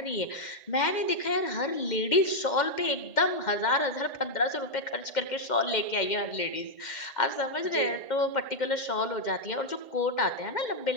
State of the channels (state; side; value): late; right; 2.1 ms